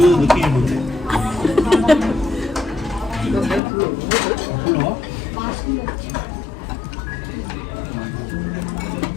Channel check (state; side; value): drops out; right; at 3.6 s